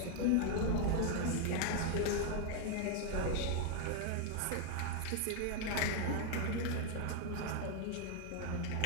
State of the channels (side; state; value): both; different; correlation 0.01